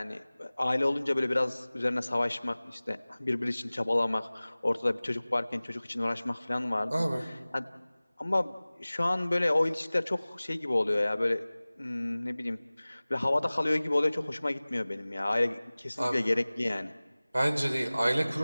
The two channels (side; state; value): both; inverted; correlation -0.99